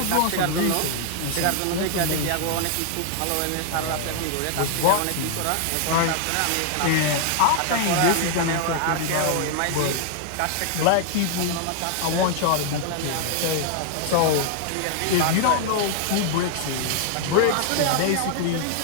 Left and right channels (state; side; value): different; both; correlation 0.00